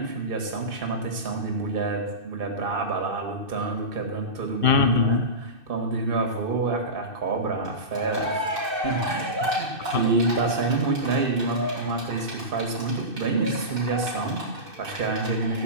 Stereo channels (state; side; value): late; left; 2.6 ms